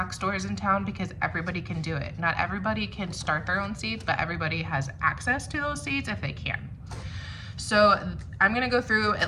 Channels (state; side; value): identical; both; correlation 1.00